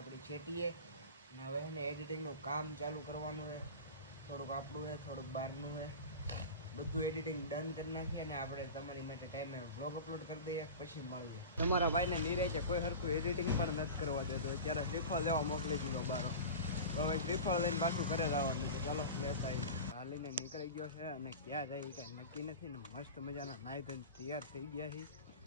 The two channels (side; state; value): both; inverted; correlation -0.31